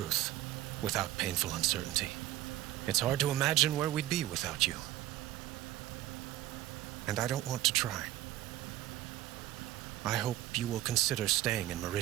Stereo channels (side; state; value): left; quieter; 14.6 dB